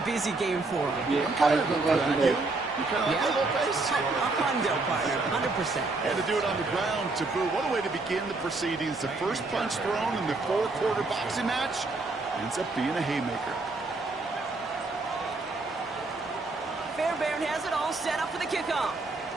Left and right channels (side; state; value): left; quieter; 3.4 dB